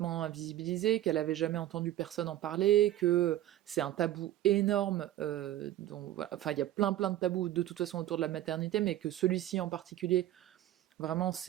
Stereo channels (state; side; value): quieter; left; 13.6 dB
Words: invisibilisé, qu'elle avait jamais entendu personne en parler, que c'est un tabou énorme, voilà. Enfin il y a plein de tabous de toute façon autour de la maternité, mais que celui-ci en particulier, vraiment,